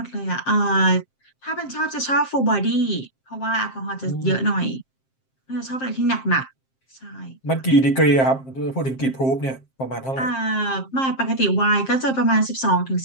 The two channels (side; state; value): right; late; 7.6 ms